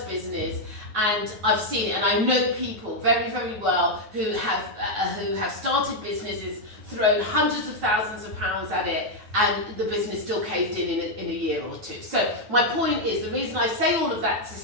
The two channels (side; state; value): left; late; 9.4 ms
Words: business, and I've seen it. And I know people very, very well who have started businesses, thrown hundreds of thousands of pounds at it, and the business still caved in a year or two. So my point is, the reason I say all of that to